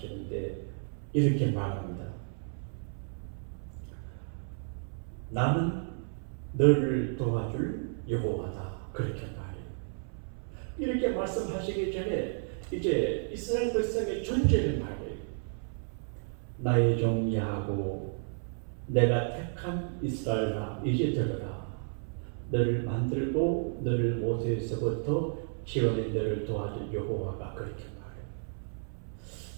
이렇게 말합니다. 나는 너를 도와줄 여호와다. 그렇게 말해요. 이렇게 말씀하시기 전에 이제 이스라엘 백성의 존재를 말해요. 나의 종 야곱, 내가 택한 이스라엘아, 이제 들어라. 너를 만들고 너를 모세에서부터 지어낸 너를 도와줄 여호와가 그렇게 말해요.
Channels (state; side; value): silent; left; 56 dB below the other